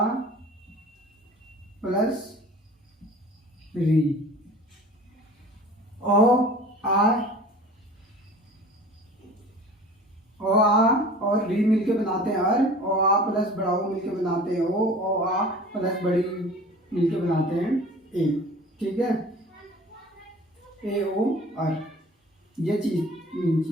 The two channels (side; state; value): both; normal; correlation 0.43